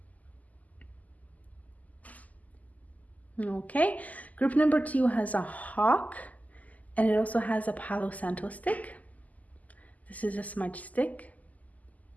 Okay, group number 2 has a hawk, and it also has a Palo Santo stick. This is a smudge stick.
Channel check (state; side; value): late; right; 0.077 ms